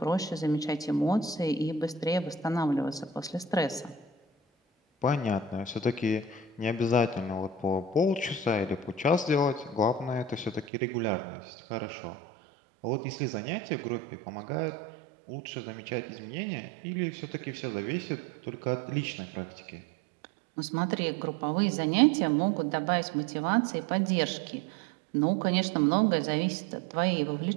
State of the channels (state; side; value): drops out; left; at 10.7 s